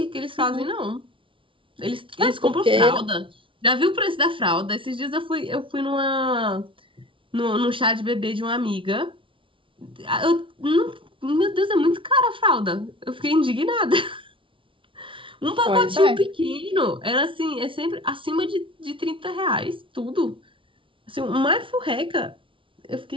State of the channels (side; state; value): left; late; 0.25 ms